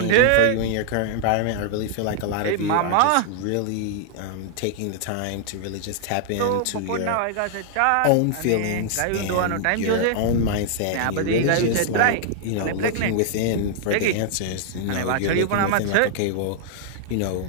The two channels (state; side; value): different; both; correlation -0.01